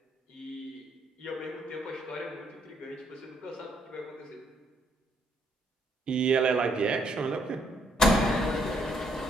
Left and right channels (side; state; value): both; normal; correlation 0.71